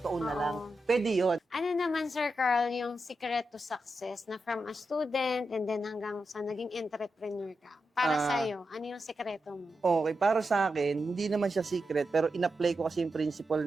to own na lang? Pwede yun. Ano naman, Sir Carl, yung secret to success na from a student and then hanggang sa naging entrepreneur ka? Para sa'yo, ano yung sekreto mo? Okay, para sa akin, hindi naman siya secret, pero in-apply ko kasi yung principle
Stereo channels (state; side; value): normal; both; correlation 0.88